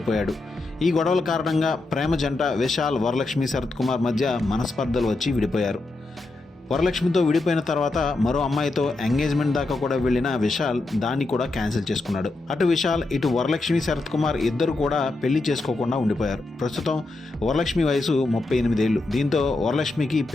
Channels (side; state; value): right; quieter; 3.1 dB